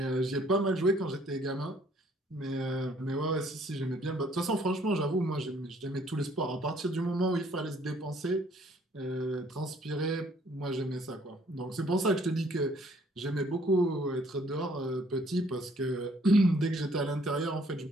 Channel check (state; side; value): normal; both; correlation 0.62